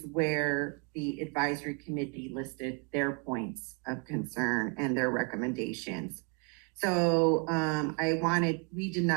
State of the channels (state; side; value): quieter; left; 34.9 dB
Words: where the advisory committee listed their points of concern and their recommendations. So we did